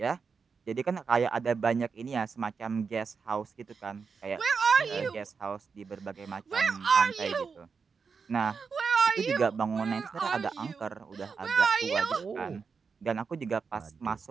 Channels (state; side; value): quieter; left; 5.4 dB